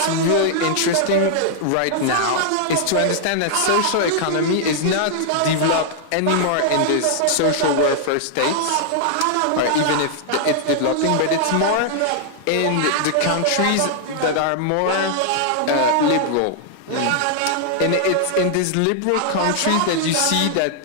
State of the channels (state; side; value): different; both; correlation -0.01